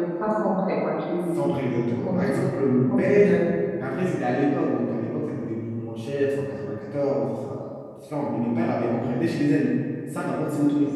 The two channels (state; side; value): identical; both; correlation 1.00